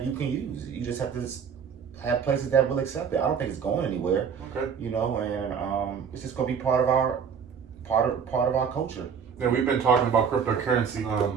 can use. You just have to have places that will accept it. I don't think it's going anywhere. Okay. And it's just going to be part of our culture. Yeah, we've been talking about cryptocurrency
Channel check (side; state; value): left; quieter; 6.9 dB